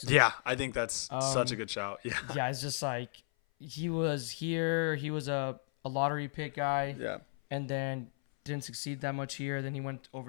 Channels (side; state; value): right; silent; 55 dB below the other